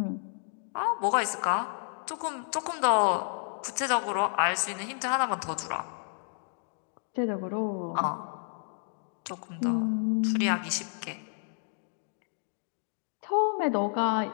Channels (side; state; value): right; silent; 57 dB below the other